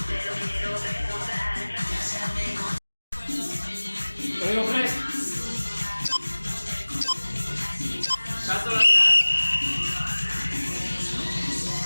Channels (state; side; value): inverted; both; correlation -1.00